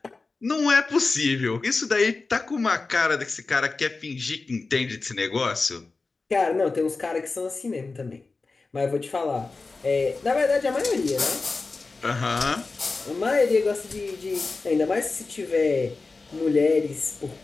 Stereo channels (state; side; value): quieter; right; 3.9 dB